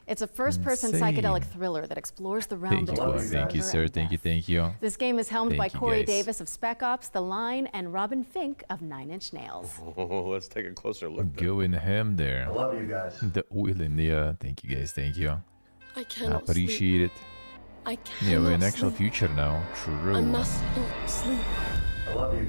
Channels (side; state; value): both; inverted; correlation -1.00